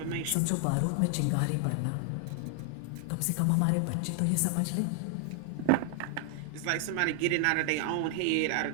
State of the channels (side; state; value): both; different; correlation 0.00